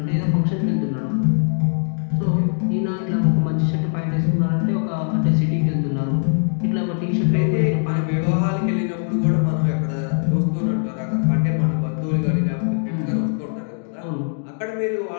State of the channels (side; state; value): right; silent; 60 dB below the other